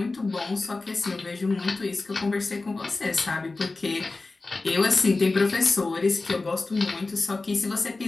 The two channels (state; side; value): quieter; right; 3.5 dB